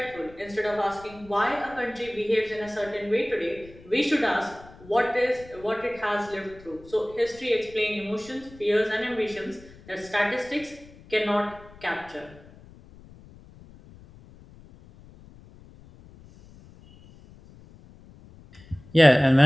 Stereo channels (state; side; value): noise; left; rumble, 22 dB below the sound